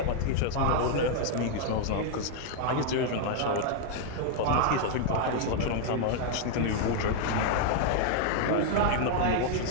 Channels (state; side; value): different; both; correlation 0.00